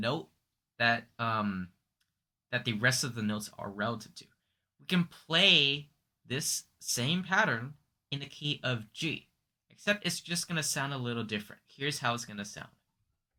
that that the rest of the notes are relative to. We can play this same pattern in the key of G, except it's just going to sound a little different. Here's how it's going to sound.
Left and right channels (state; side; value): identical; both; correlation 1.00